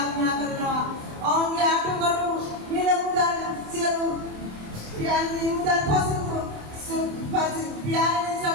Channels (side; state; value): left; late; 27 ms